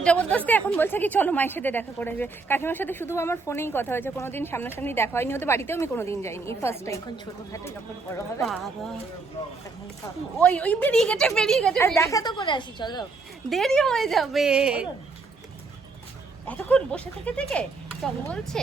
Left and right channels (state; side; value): quieter; left; 4.0 dB